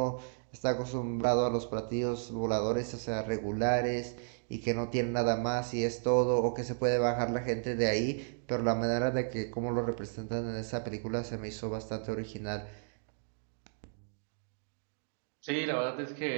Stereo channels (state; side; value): silent; left; digital silence